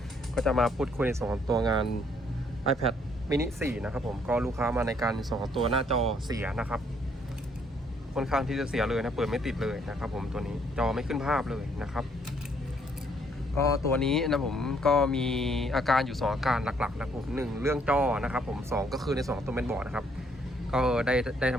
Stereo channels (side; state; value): both; normal; correlation 0.67